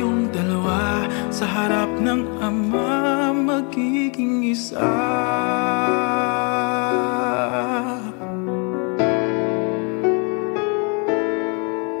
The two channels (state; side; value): quieter; right; 35.6 dB